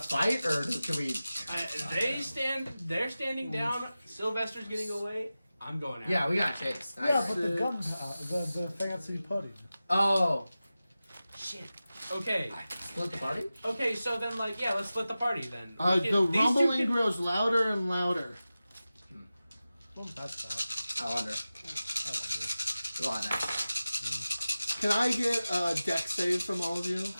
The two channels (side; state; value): both; inverted; correlation -0.95